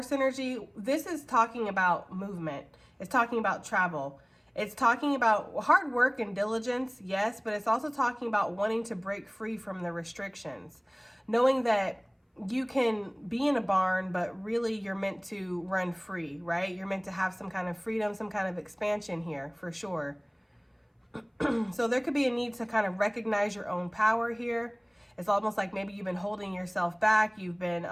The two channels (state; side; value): identical; both; correlation 1.00